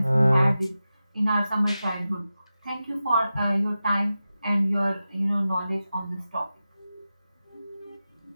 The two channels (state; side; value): inverted; both; correlation -0.93